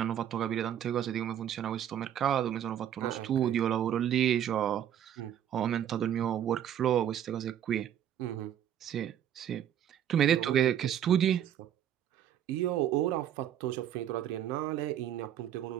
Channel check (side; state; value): left; quieter; 10.3 dB